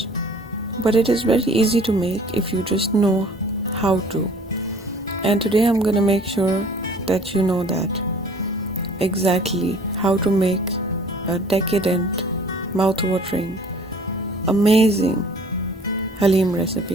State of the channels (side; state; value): both; normal; correlation 0.51